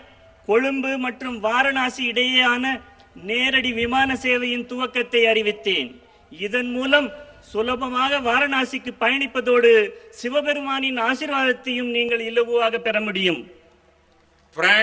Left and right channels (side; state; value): both; identical; correlation 1.00